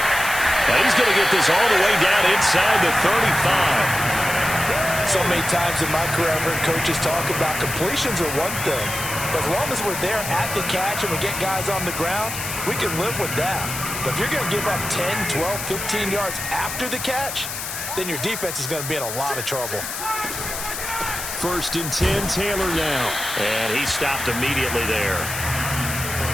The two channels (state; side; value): noise; left; hiss, 6 dB below the sound